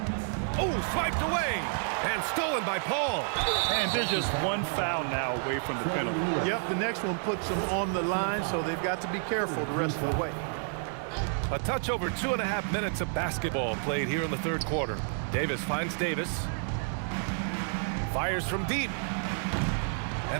Oh, swiped away. And stolen by Paul. And there's just one foul now away from the penalty. Yep, the next one puts them on the line, so they've got to be careful the rest of the way. A touch over 2.5 minutes of basketball played here in the third quarter. Davis finds Davis. Fires from deep.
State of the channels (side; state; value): left; silent; 58 dB below the other